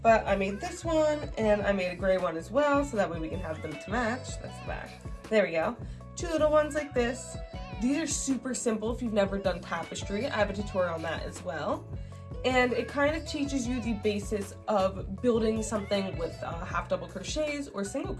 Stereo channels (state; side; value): identical; both; correlation 1.00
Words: but I made this one, and I made a gray one as well, so that way we can have them to match. That's the back. There we go. Two little ones like this. These are super simple if you've never done tapestry. I have a tutorial on that as well. And it kind of teaches you the basis of building something with half double crochets or single